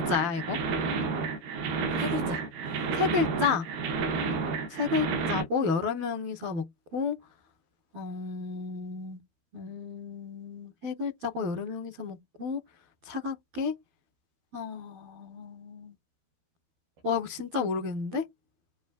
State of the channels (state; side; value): late; left; 12 ms